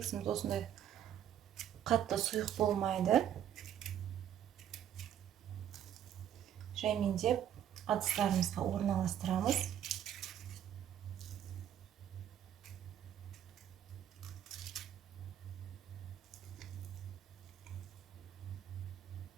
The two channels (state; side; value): quieter; left; 10.2 dB